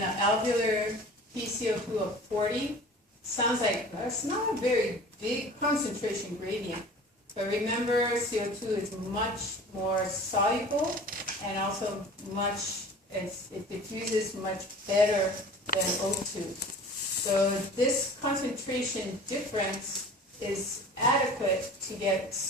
an alveolar PCO2 of 40. Sounds like that's not a very big concentration gradient. But remember, CO2 is much more soluble and also it diffuses much better than O2. So this concentration difference is adequate to get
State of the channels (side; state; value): both; normal; correlation 0.42